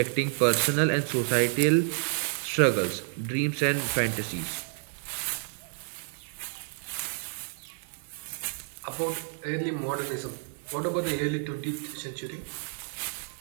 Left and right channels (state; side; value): silent; left; 57 dB below the other